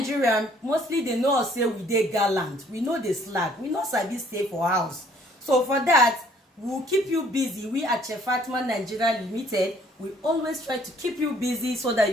mostly dey know us say we dey gallant, we no dey slack, we no sabi stay for house. So for that, we will keep you busy. We at Chef Fatima Nigeria Limited, we always try to keep you busy so that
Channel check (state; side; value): normal; both; correlation 0.61